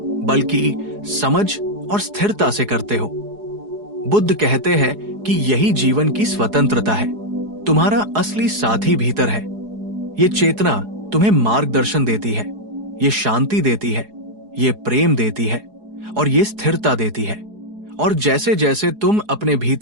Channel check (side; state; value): left; late; 4.8 ms